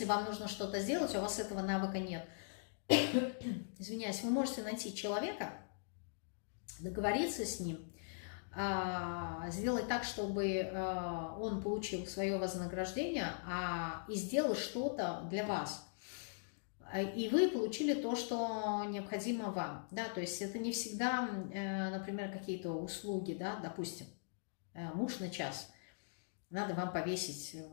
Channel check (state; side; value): silent; right; digital silence